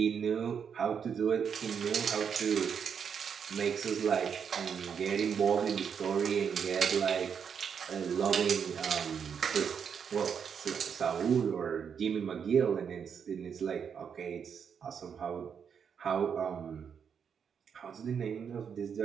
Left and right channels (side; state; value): left; quieter; 7.1 dB